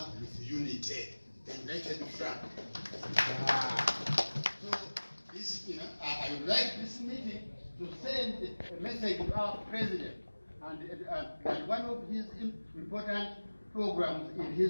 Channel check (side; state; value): both; inverted; correlation -1.00